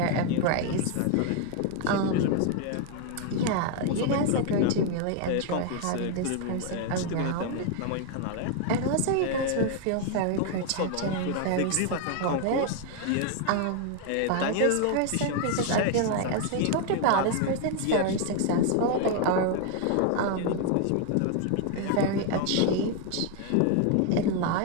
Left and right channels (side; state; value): both; different; correlation 0.00